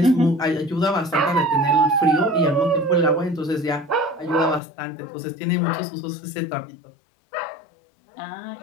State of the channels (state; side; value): drops out; right; at 4.6 s